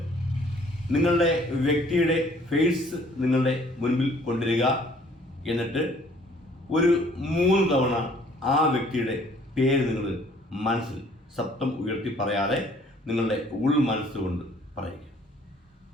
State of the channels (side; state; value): both; normal; correlation 0.58